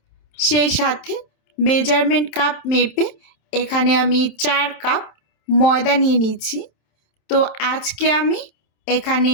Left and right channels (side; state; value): right; late; 27 ms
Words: সেই সাথে মেজারমেন্ট কাপ মেপে এখানে আমি 4 কাপ ময়দা নিয়ে নিচ্ছি। তো আজকে আমি এখানে